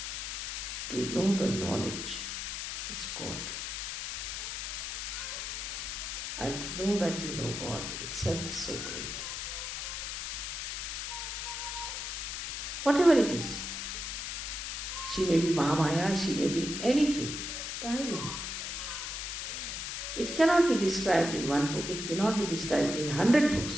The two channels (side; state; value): left; noise; hiss, 4 dB below the sound